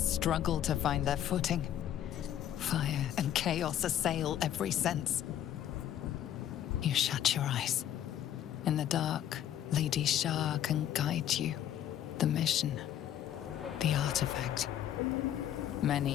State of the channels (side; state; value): right; quieter; 10.9 dB